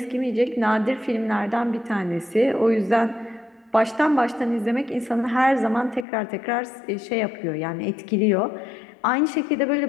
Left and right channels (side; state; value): right; drops out; at 6.1 s